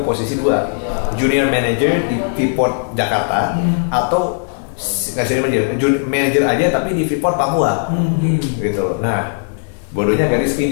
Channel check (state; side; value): silent; right; digital silence